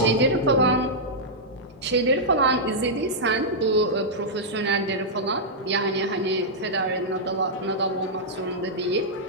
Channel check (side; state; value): both; normal; correlation -0.08